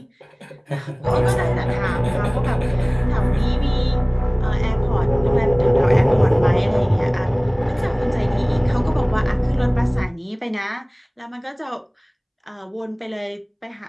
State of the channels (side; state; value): both; identical; correlation 1.00